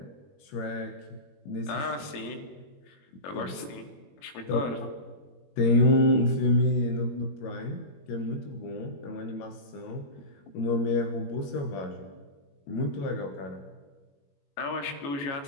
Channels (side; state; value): right; late; 21 ms